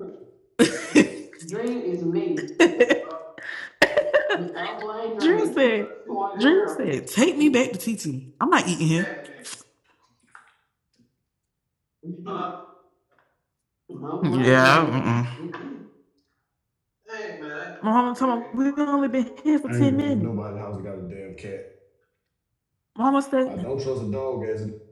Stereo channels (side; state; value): both; identical; correlation 1.00